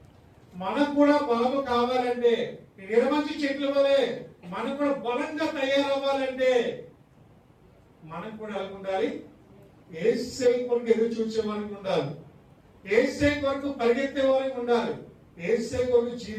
మనకు కూడా బలము కావాలంటే నిర్మంచి చెట్ల వలె మనం కూడా బలంగా తయారవ్వాలంటే మనకు కూడా ఎలా ఉండాలి? యేసయ్య కొరకు ఎదురు చూసే వారికి ఉండాలి, యేసయ్య కొరకు పరిగెత్తే వారికి ఉండాలి, యేసయ్య కొరకు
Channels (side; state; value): both; identical; correlation 1.00